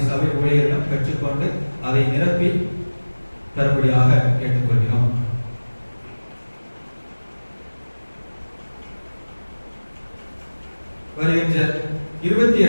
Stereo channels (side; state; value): both; inverted; correlation -1.00